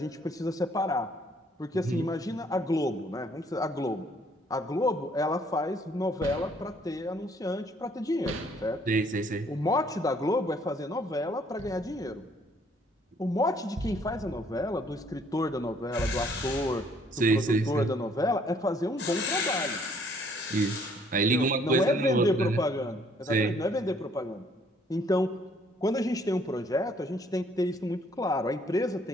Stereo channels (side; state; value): both; normal; correlation 0.63